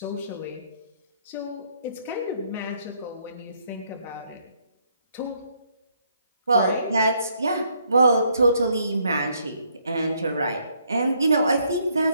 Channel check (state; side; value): inverted; both; correlation -0.70